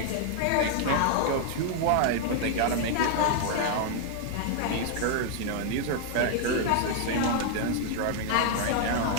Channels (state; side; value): different; both; correlation 0.00